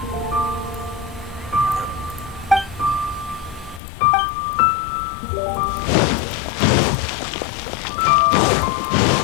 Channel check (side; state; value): right; drops out; at 3.8 s